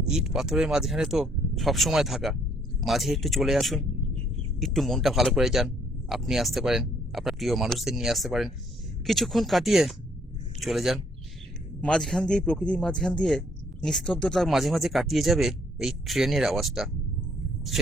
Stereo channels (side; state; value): both; normal; correlation 0.66